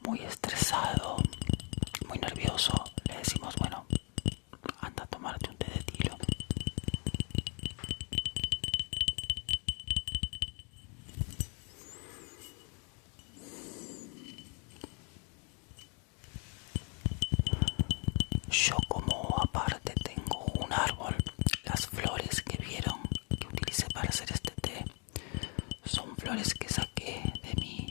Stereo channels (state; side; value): quieter; right; 35.6 dB